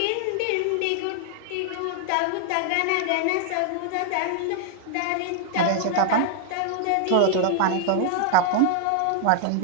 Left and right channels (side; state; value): both; different; correlation 0.00